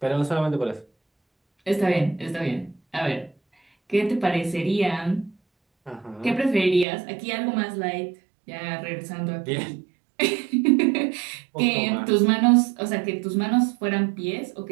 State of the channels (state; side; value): drops out; left; at 6.9 s